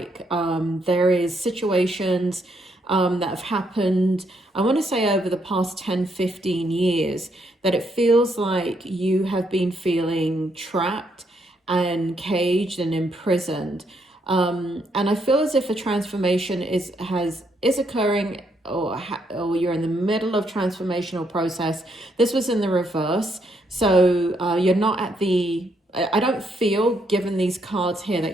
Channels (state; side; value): normal; both; correlation 0.75